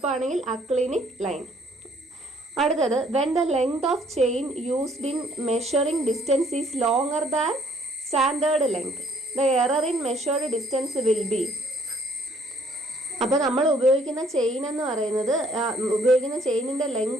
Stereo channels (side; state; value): both; normal; correlation 0.62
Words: ആണെങ്കിൽ അക്ലിനിക് ലൈൻ. അടുത്തത്, when the length of chain used in measuring distance is longer than standard length, the error in measured distance will be. അപ്പോൾ നമ്മൾ ഉപയോഗിക്കുന്ന chain എന്ന് പറയുന്നത്, ഉപയോഗിക്കുന്ന ചെയിനിൻ്റെ